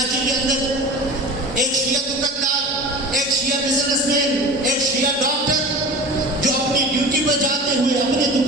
کے اندر، ایک شیعہ دکاندار، ایک شیعہ بزنس مین، ایک شیعہ ڈاکٹر جو اپنی ڈیوٹی پر جاتے ہوئے، اپنے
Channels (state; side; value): normal; both; correlation 0.34